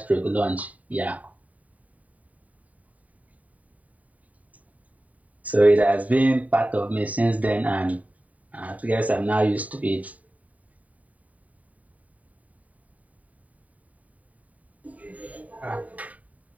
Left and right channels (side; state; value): left; late; 0.070 ms